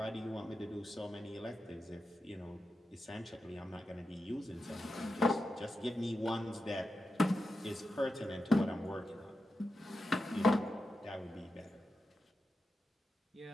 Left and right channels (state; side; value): normal; both; correlation 0.89